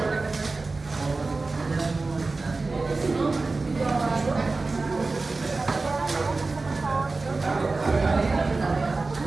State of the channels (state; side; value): quieter; left; 3.6 dB